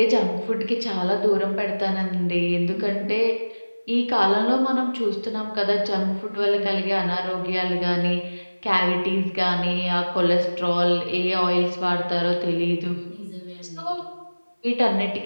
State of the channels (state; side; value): inverted; both; correlation -1.00